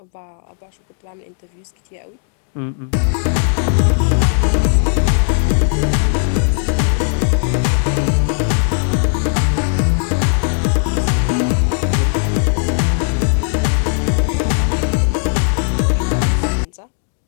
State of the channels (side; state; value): right; silent; 67 dB below the other